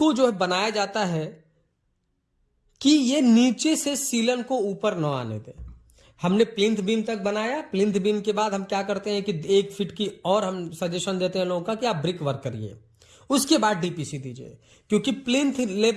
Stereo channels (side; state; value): both; identical; correlation 1.00